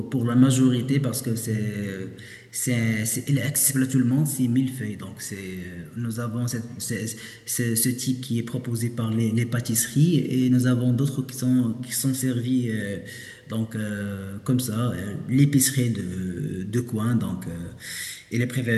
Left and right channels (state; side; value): identical; both; correlation 1.00